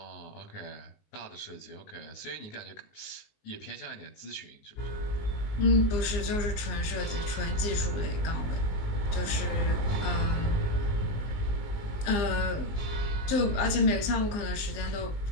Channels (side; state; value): right; late; 19 ms